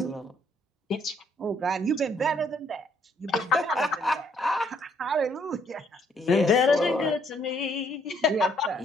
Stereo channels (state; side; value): normal; both; correlation 0.68